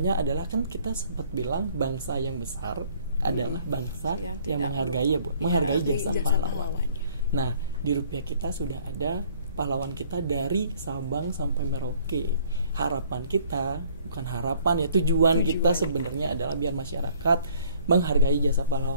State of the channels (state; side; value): inverted; both; correlation -0.58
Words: adalah kan kita sempat bilang bangsa yang besar adalah bangsa yang menghargai menghargai jasa pahlawan. Nah, di rupiah kita sudah ada pahlawan kita dari Sabang sampai Merauke. Harapan kita, bukan harapan ya, tujuan kita sebenarnya adalah biar masyarakat menghargai jasa